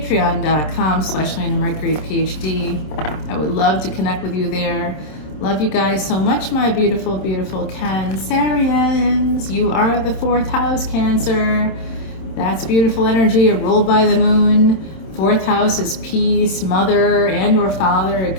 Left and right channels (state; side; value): late; right; 26 ms